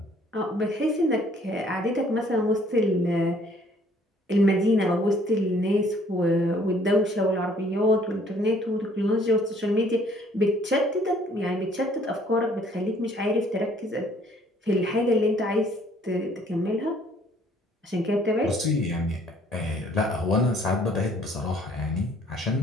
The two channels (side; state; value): both; normal; correlation 0.60